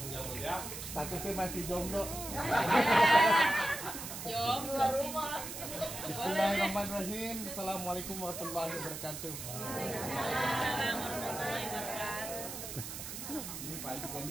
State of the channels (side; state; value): right; noise; hiss, 8 dB below the sound